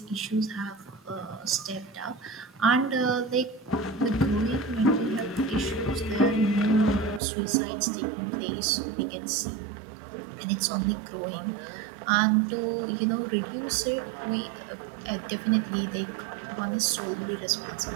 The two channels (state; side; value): drops out; left; at 7.2 s